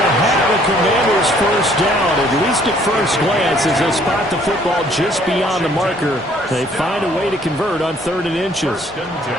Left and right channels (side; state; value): both; normal; correlation 0.61